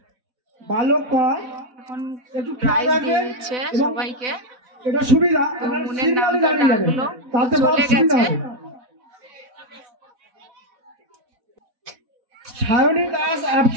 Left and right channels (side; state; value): left; late; 4.0 ms